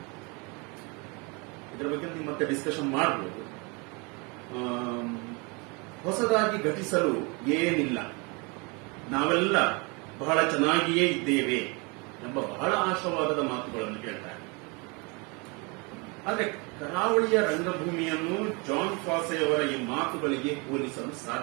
ಇದರ ಬಗ್ಗೆ ನೀವು ಮತ್ತೆ ಡಿಸ್ಕಷನ್ ಮಾಡಬಹುದು. ಹೊಸದಾಗಿ ಘಟಿಸಲು ಏನಿಲ್ಲ, ನಾವೆಲ್ಲ ಬಹಳ ಚೆನ್ನಾಗಿಯೇ ಇದ್ದೇವೆ ಎಂಬ ಬಹಳ ಆಶಾವಾದದ ಮಾತುಗಳನ್ನು ಹೇಳ್ತಾರೆ. ಆದರೆ ಕರಾವಳಿಯ ರಂಗಭೂಮಿಯನ್ನು ಜಾನ್ ಫಾಸೆಯವರ ಈ ಮಾತುಗಳಿಗೆ ಹೋಲಿಸಲು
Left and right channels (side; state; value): left; quieter; 29.9 dB